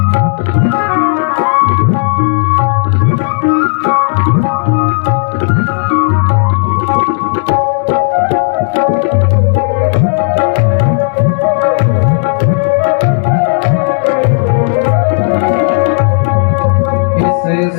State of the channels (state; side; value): silent; right; 73 dB below the other